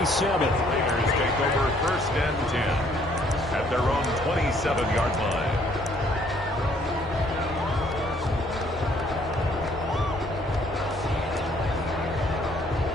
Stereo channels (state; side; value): normal; both; correlation 0.64